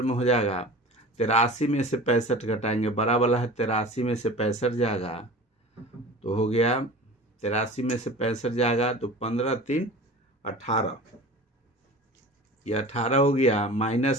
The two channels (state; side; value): normal; both; correlation 0.38